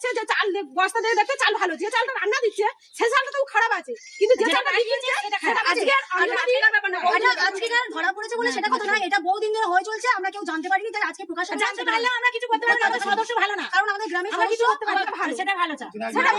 যে চাল বস্তা দিয়ে দেখতে চাল ভালো, যে চালটা রান্না দিচ্ছে সে চালটা তো খারাপ আছে, কিন্তু যে চালটা দিচ্ছে আজকে ধরা পড়েছে বলে সেটা কথা নয়, এটা বহুদিন ধরে হয়ে চলছে, আমরা কেউ জানতে পারিনি, তাই আজকে প্রকাশ জানতে পারলেও আমরা কিছু করতে পারবো না, সদস্য ভালো না, কারণ আমাদের গ্রামে কিছু করতে পারবো না, ভালো সেটা ভালো চাল, সেটা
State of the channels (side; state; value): both; identical; correlation 1.00